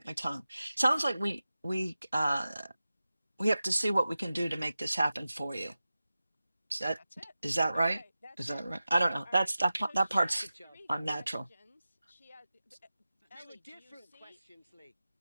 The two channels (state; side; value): inverted; both; correlation -0.94